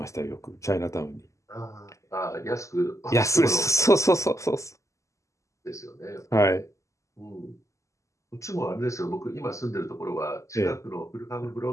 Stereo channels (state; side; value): late; right; 0.15 ms